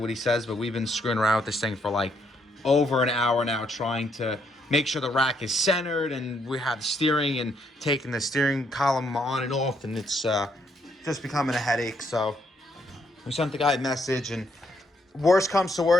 he says, but we've been screwing around with this thing for like over an hour now, trying to make sure the rack is centered, and we have steering and taking the steering column on and off, and it's just becoming a headache. So we sent the guy a message, and worst comes to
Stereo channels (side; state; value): both; normal; correlation 0.73